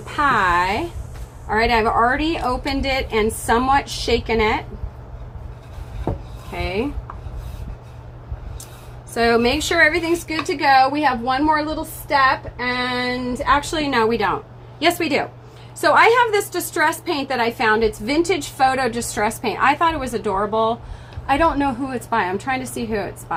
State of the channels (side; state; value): both; identical; correlation 1.00